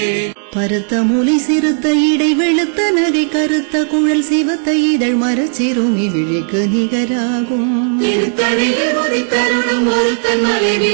பருத்த மூலை சிறுத்த இடை வெளுத்த நகை கருத்த குழல் சிவத்த இதழ் மரச்சிறுமி விழிக்கு நிகராகும் திருத்தணிலே உதித்தருளும் ஒருத்தன் மலை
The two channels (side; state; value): left; silent; digital silence